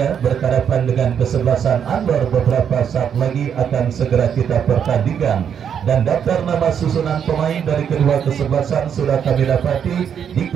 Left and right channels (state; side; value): quieter; left; 8.1 dB